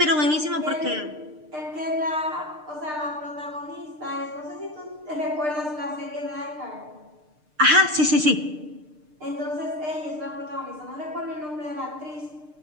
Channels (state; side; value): late; left; 6.6 ms